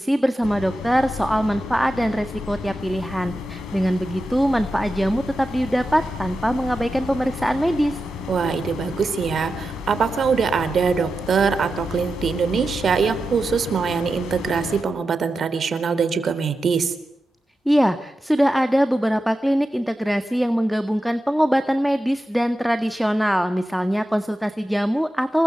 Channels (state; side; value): normal; both; correlation 0.90